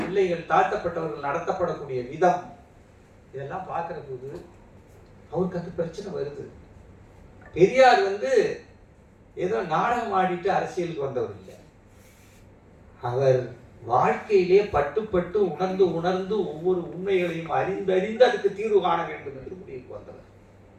பிள்ளைகள், தாழ்த்தப்பட்டவர்கள் நடத்தப்படக்கூடிய விதம், இதெல்லாம் பார்க்கிற போது அவருக்கு அந்த பிரச்சனை வருது. பெரியார் ஏதோ நாடகம் ஆடிட்டு அரசியலுக்கு வந்தவர் இல்லை. அவர் வாழ்க்கையிலே பட்டு பட்டு உணர்ந்து உணர்ந்து ஒவ்வொரு உண்மைகளையும் அறிந்து அதுக்கு தீர்வு காண வேண்டும் என்று முடிவுக்கு வந்தவர்.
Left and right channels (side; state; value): both; identical; correlation 1.00